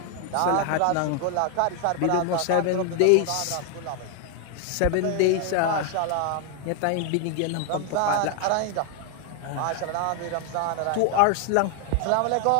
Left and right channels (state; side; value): different; both; correlation 0.00